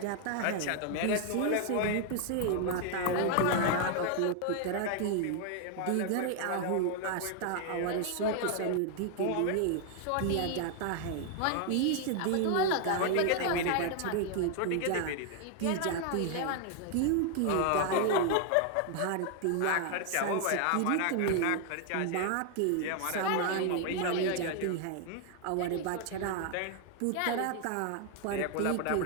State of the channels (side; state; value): both; different; correlation 0.00